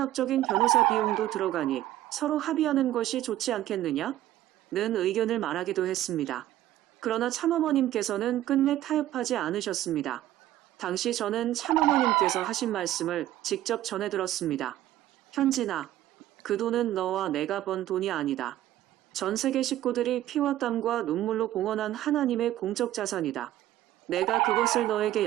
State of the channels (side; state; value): left; quieter; 13.8 dB